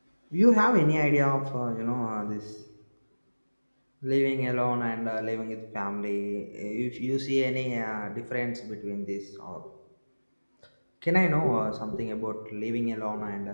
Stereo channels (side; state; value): both; inverted; correlation -1.00